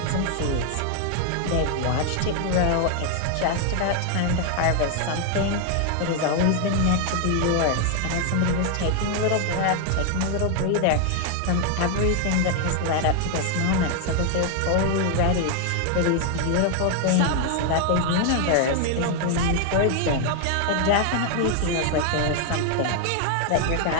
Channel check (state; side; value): different; both; correlation 0.00